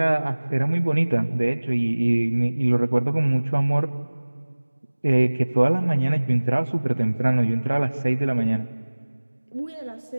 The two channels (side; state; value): both; inverted; correlation -1.00